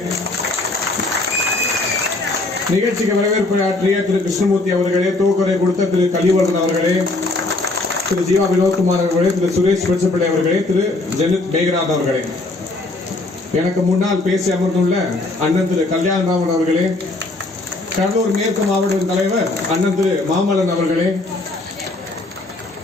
நிகழ்ச்சிக்கு வரவேற்பு ஆற்றிய திரு கிருஷ்ணமூர்த்தி அவர்களே, தூக்குறை கொடுத்த திரு கலிவர்தன் அவர்களே, திரு ஜீவா வினோத்குமார் அவர்களே, திரு சுரேஷ் பெருசப்பிள்ளை அவர்களே, திரு ஜெனித் மேகநாத் அவர்களே, எனக்கு முன்னால் பேசி அமர்ந்துள்ள அண்ணன் திரு கல்யாணராமன் அவர்களே, கடலூர் மேற்கு மாவட்ட தலைவர் அண்ணன் திரு மாமல்லன் அவர்களே,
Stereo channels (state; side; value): quieter; right; 3.0 dB